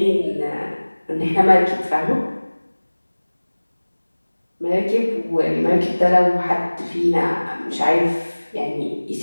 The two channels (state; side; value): inverted; both; correlation -1.00